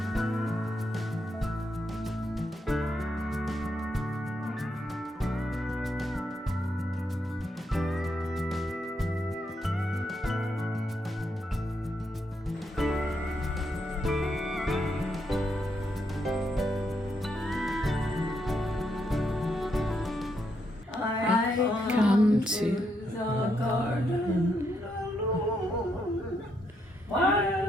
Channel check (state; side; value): normal; both; correlation 0.78